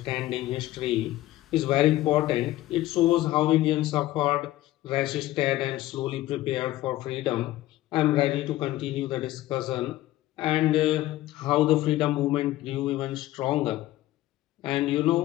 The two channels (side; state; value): right; quieter; 15.7 dB